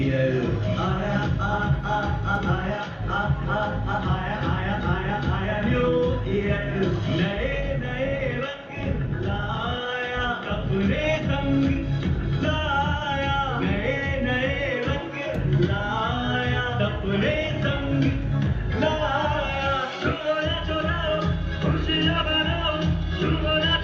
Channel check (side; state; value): both; identical; correlation 1.00